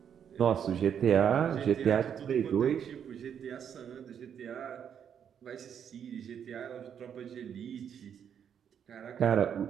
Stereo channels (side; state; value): left; quieter; 8.3 dB